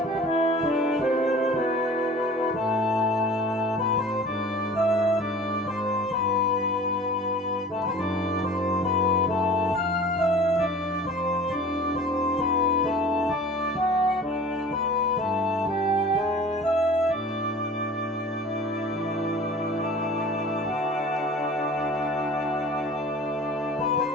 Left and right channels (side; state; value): both; normal; correlation 0.44